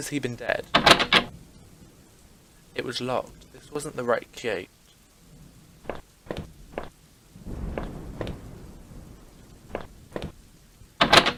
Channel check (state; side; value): identical; both; correlation 1.00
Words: he been dead? It was locked. This wasn't the right gate.